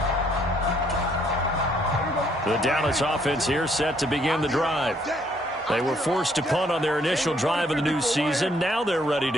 The Dallas offense here set to begin the drive. They were forced to punt on their initial drive of the new season. Now they're ready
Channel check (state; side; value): normal; both; correlation 0.67